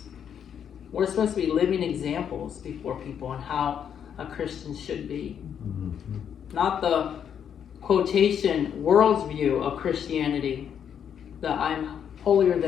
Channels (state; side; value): quieter; right; 8.4 dB